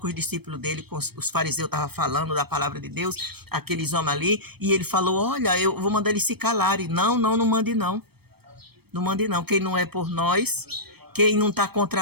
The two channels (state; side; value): late; left; 0.97 ms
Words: os discípulos dele, com os fariseus estavam falando da palavra de Deus, aqueles homens ali, e ele falou, olha, eu vou mandar eles se calarem. Não mande não. Não mande não. Quem não é por nós, quem não está